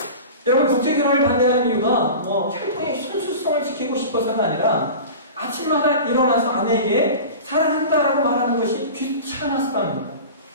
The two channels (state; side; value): inverted; both; correlation -0.34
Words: 여러분 국제결혼을 반대하는 이유가 혈통의 순수성을 지키고 싶어서가 아니라 아침마다 일어나서 아내에게 사랑한다라고 말하는 것이 귀찮아서 하는 거예요.